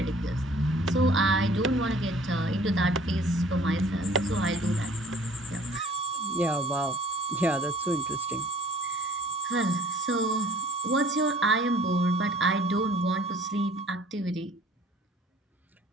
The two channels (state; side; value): normal; both; correlation 0.53